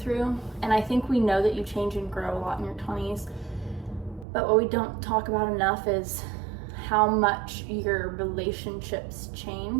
And I think we know that you change and grow a lot in your 20s, but what we don't talk about enough is how much your relationships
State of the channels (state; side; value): drops out; left; at 4.2 s